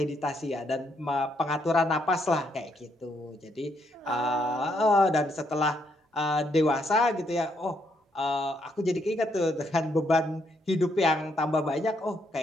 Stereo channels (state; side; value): normal; both; correlation 0.75